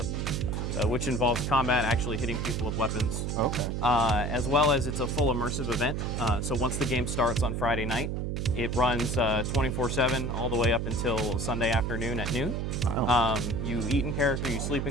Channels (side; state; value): right; noise; hum, 2 dB below the sound